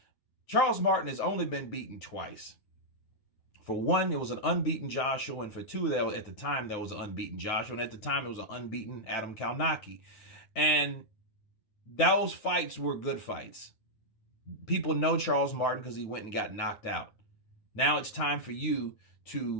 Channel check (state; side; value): late; right; 9.4 ms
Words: Charles Martin has only been beaten twice. For one, it was an unbeaten Joshua, and for two, at the time, there was an unbeaten Joshua, and at the time, it was an unbeaten Adam Kalnacki. And those fights were good fights. People know Charles Martin because he went and got knocked out. Now it's time for you